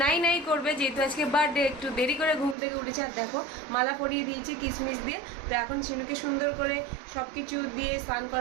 নাই নাই করবে, যেহেতু আজকে বার্থডে, একটু দেরি করে ঘুম থেকে উঠেছে। আর দেখো মালা পরিয়ে দিয়েছি কিশমিশ দিয়ে। তো এখন শিনুকে সুন্দর করে সব কিছু দিয়ে স্নান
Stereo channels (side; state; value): left; drops out; at 2.6 s